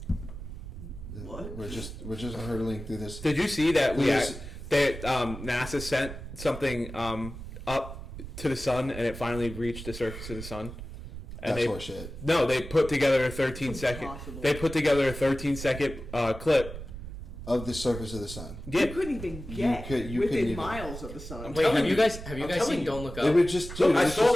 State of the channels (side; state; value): right; noise; rumble, 11 dB below the sound